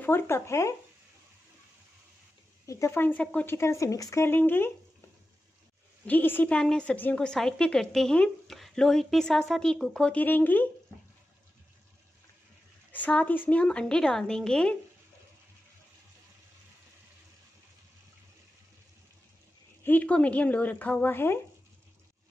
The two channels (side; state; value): both; normal; correlation 0.92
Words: कप है। एक दफ़ा इन सबको अच्छी तरह से मिक्स कर लेंगे। जी इसी पैन में सब्जियों को साइड पे करते हैं। लो हीट पे साथ साथ ही कुक होती रहेंगी। साथ इसमें हम अंडे डाल देंगे। हीट को मीडियम लो रखा हुआ है।